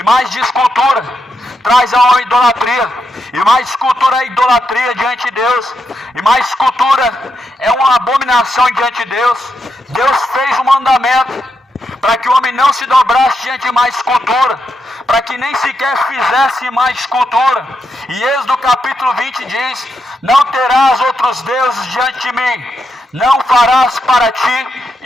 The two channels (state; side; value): normal; both; correlation 0.84